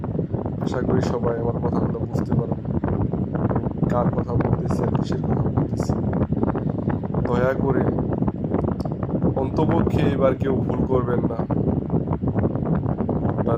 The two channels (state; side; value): identical; both; correlation 1.00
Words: আশা করি সবাই আমার কথাগুলো বুঝতে পারবেন কার কথা বলতেছি আর কিসের কথা বলতেছি। দয়া করে অন্তপক্ষে এবার কেউ ভুল করবেন না, বা